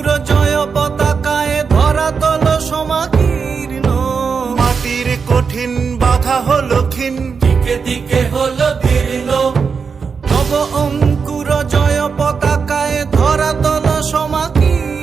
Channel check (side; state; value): left; quieter; 5.6 dB